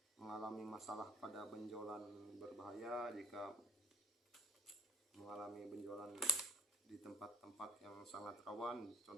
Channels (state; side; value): normal; both; correlation 0.52